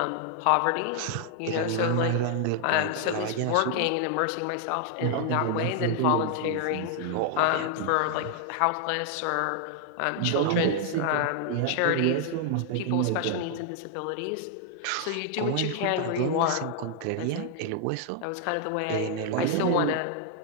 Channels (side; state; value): both; different; correlation 0.00